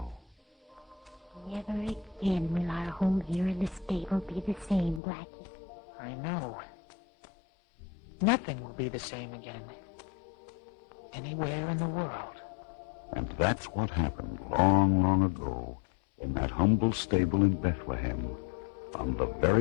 Never again will our home here in the stable be the same, Blackie. I know. Nothing will be the same again. Anywhere in the world. And that's what happened long, long ago in that humble stable in Bethlehem on the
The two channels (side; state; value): right; drops out; at 5.0 s